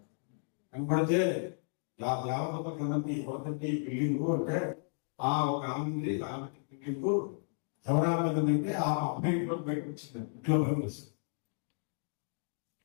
కనపడితే దేవతకి బిల్డింగ్ అంటే ఆ ఒక ఆమె బిల్డింగ్ ఎవరాలంటే ఆ అమ్మాయి ఇంట్లో బయటకు వచ్చింది. ఇంట్లో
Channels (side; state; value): right; silent; digital silence